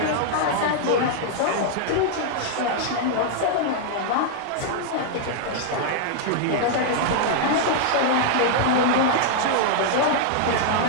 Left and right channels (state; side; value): different; both; correlation -0.01